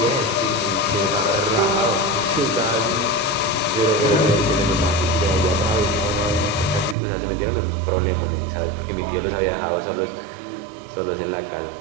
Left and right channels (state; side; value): drops out; left; at 7.0 s